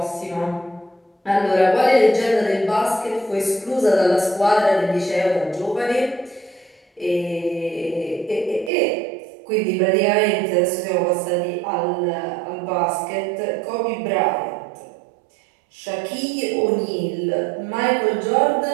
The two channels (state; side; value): drops out; left; at 8.7 s